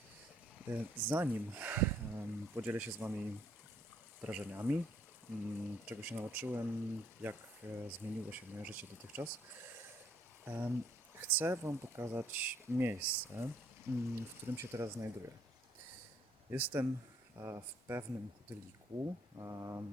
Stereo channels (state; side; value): normal; both; correlation 0.66